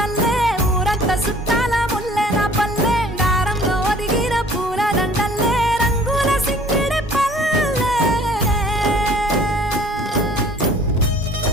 ఊరంత సుట్టాల ముల్లెన పల్లె దారంలో ఒదిగిన పూల దండల్లే రంగుల సింగిడి పల్లె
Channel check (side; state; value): both; normal; correlation 0.52